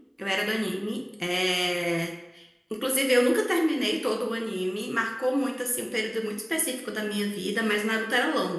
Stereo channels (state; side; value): identical; both; correlation 1.00